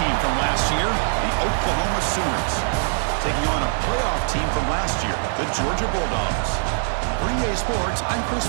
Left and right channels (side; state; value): left; silent; digital silence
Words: from last year, the Oklahoma Sooners, taking on a playoff team from last year, the Georgia Bulldogs. For EA Sports, I'm Chris